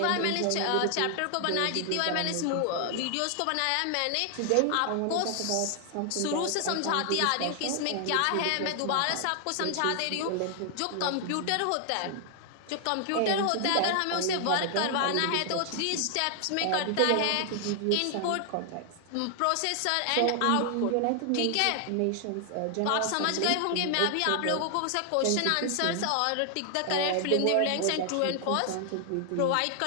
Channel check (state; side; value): different; both; correlation 0.00